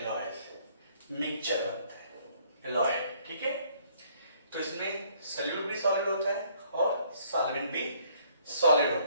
मिक्सचर बनता है एलॉयल, ठीक है। तो इसमें सॉल्यूट भी सॉलिड होता है और सॉल्वेंट भी सॉलिड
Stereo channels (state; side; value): inverted; both; correlation -0.63